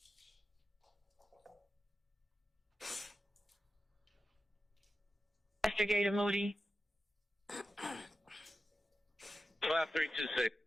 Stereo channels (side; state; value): both; normal; correlation 0.92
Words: Investigator Moody. 5326.